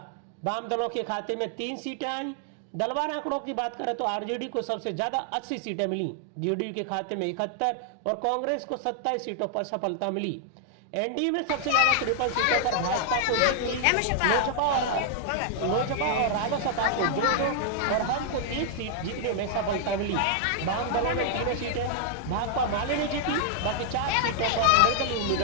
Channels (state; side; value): different; both; correlation 0.00